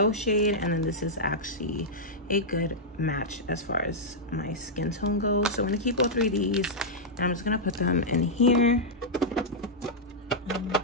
shade, and then this is actually a good match as far as my skin tone goes. So I'm gonna keep all 3 of these, and I'm just gonna put them in here.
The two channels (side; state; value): both; normal; correlation -0.08